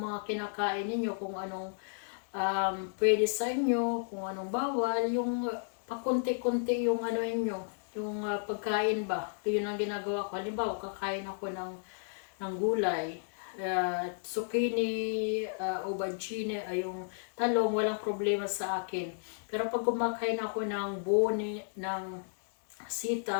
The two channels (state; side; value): silent; right; 56 dB below the other